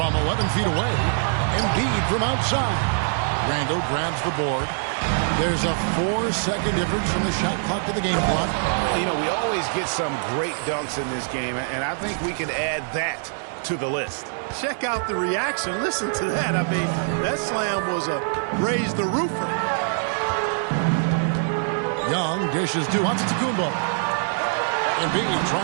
11 feet away. Embiid from outside. Randle grabs the board. There's a 4-second difference from the shot clock to the game clock. You know, we always get some great dunks in this game, and I think we can add that to the list. Check out the reaction. Listen to that. I mean, that slam was a raise the roofer. Young dishes to Antetokounmpo. Embiid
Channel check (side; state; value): left; silent; digital silence